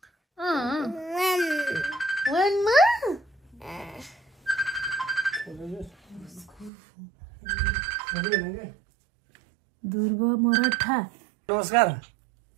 1 मा? ध्रुव मराठा नमस्कार।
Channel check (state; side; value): drops out; left; at 6.7 s